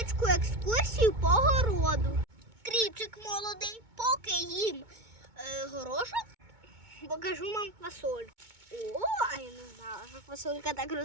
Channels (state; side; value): late; left; 2.2 ms